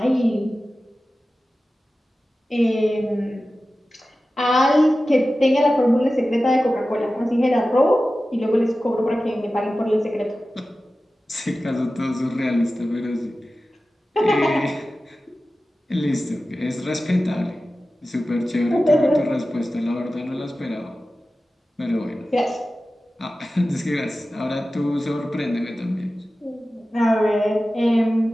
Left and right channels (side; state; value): both; normal; correlation 0.95